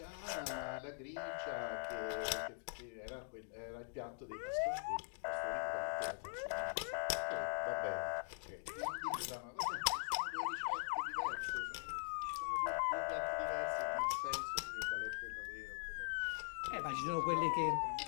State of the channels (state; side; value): silent; right; digital silence